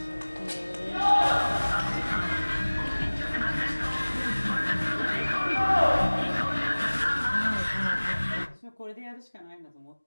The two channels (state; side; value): inverted; both; correlation -1.00